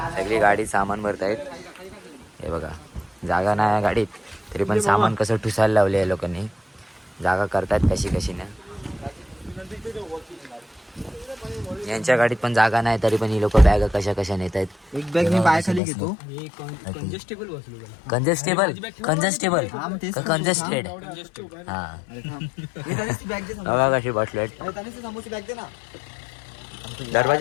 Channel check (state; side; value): drops out; right; at 15.8 s